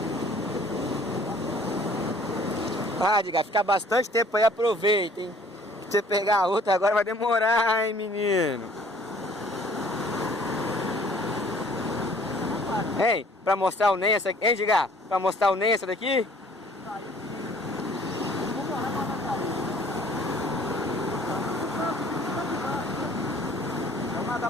Ah, Edgar, ficar bastante tempo aí, aproveita, hein? Se você pegar a outra agora vai demorar, hein, menino? Hein, pra mostrar o NEM essa aqui, hein, Edgar? Pra mostrar o NEM essa daqui? Vamos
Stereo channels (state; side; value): normal; both; correlation 0.55